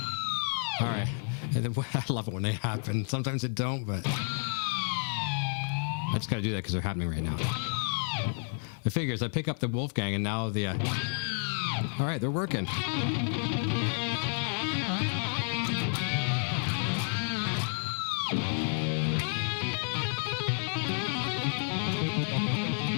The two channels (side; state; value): right; silent; 57 dB below the other